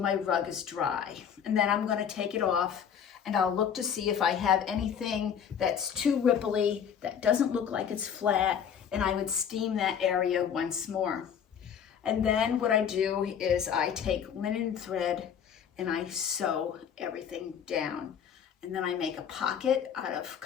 rug is dry. And then I'm going to take it off, and I'll look to see if I have anything that's too ripply, that doesn't look like it's flat, and I would steam that area once more. And then what I do is I take linen thread and I sew everything down. And then I make a pocket out of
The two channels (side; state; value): right; quieter; 8.1 dB